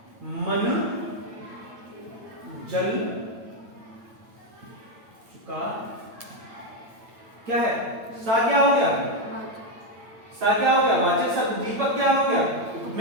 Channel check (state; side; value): late; left; 8.9 ms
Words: मन जल चुका। क्या है, सा क्या हो गया, सा क्या हो गया, वाचक शब्द, दीपक क्या हो गया,